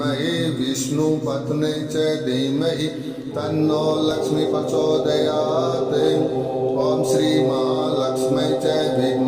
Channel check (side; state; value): both; identical; correlation 1.00